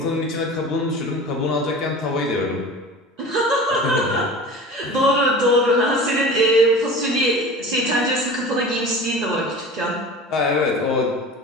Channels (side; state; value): both; normal; correlation 0.37